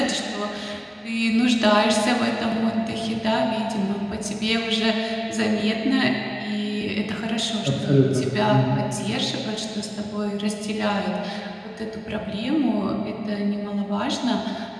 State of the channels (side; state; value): both; identical; correlation 1.00